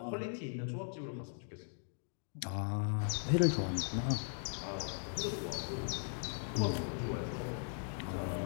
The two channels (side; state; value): right; silent; digital silence